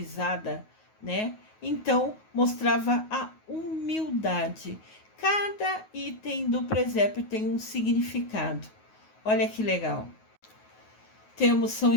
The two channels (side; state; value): right; late; 9.4 ms